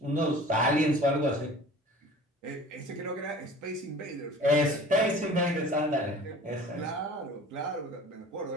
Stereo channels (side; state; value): both; normal; correlation 0.44